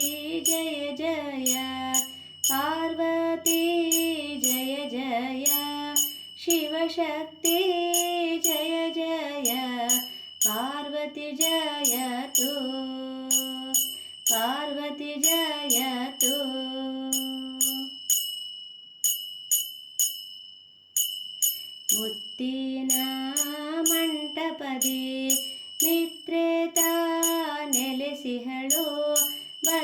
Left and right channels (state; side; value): identical; both; correlation 1.00